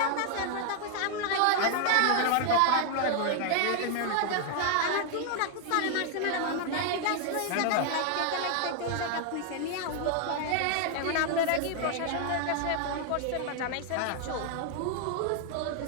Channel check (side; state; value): both; different; correlation 0.00